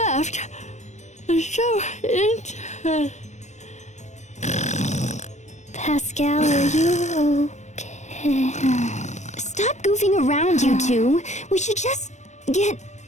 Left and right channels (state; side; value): late; right; 0.34 ms